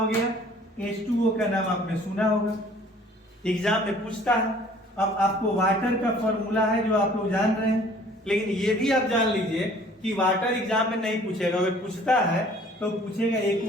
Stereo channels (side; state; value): both; normal; correlation 0.53